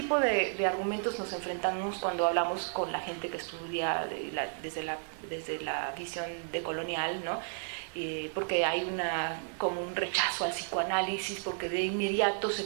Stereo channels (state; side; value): silent; left; 55 dB below the other